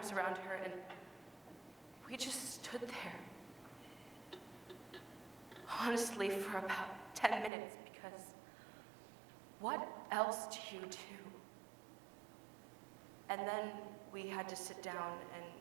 around her, and we just stood there. Honestly, for about 10 minutes, because what else do you do? And then we had to sit down and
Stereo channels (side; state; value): left; drops out; at 7.5 s